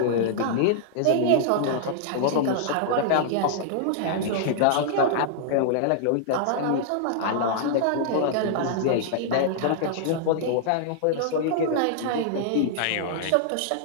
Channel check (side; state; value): both; different; correlation -0.01